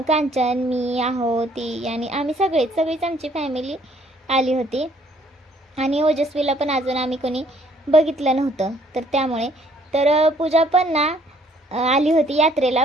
कांचन, मी, आहो, ती आणि आम्ही सगळीच आमची फॅमिली आली होती। आणि ओजस्वीला पण अजून आम्ही कोणी बघितलं नव्हतं, तर त्यामुळे तर पूजा पण ना आली होती यात्रेला।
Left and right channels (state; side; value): normal; both; correlation 0.62